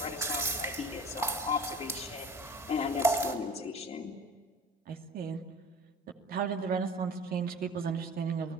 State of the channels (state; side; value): normal; both; correlation 0.41